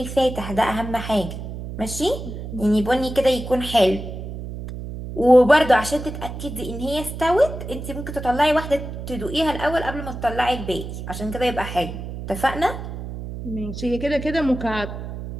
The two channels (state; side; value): noise; right; hum, 8 dB below the sound